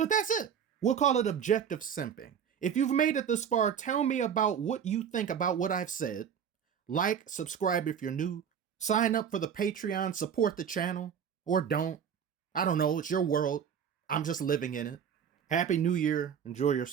that's it. We'll call it objective simping. If you've made it this far, tell me about what you think about what I've said. Like, subscribe if you're new, sign up for the Patreon, support the channel, or don't. I don't know, it's your world. I'm just living in it. Happy New Year. Enjoy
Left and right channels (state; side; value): quieter; left; 8.0 dB